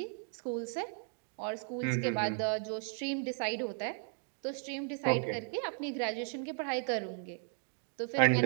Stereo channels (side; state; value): left; silent; 54 dB below the other